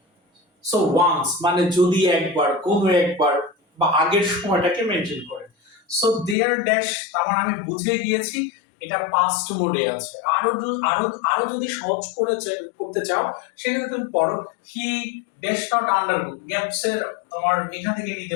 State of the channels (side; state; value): right; drops out; at 6.4 s